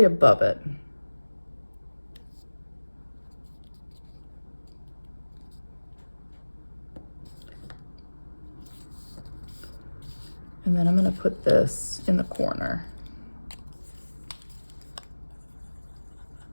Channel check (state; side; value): inverted; both; correlation -1.00